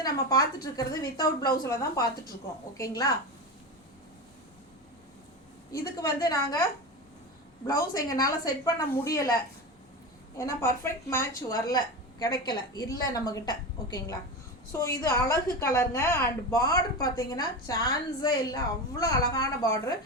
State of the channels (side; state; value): both; normal; correlation 0.22